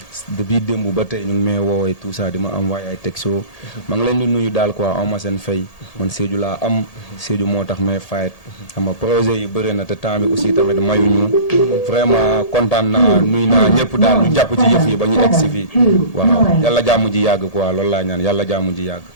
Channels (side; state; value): right; late; 1.8 ms